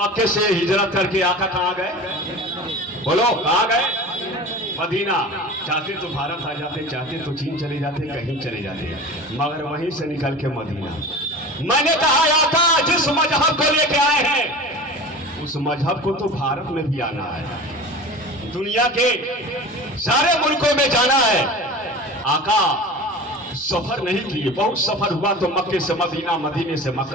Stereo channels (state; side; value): normal; both; correlation 0.35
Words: से हिजरत करके आका कहाँ गए? बोलो कहाँ गए? मदीना। चाहते तो भारत आ जाते, चाहते तो चीन चले जाते, कहीं चले जाते, मगर वहीं से निकल के मदीना। मैंने कहा आका जिस मजहब को लेके आए हैं उस मजहब को तो भारत में भी आना है, दुनिया के सारे मुल्कों में जाना है। आका सफर नहीं किए, बहुत सफर हुआ तो मक्के से मदीना, मदीने से